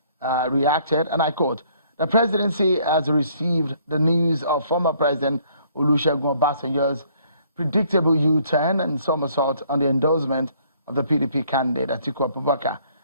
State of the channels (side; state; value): both; inverted; correlation -0.63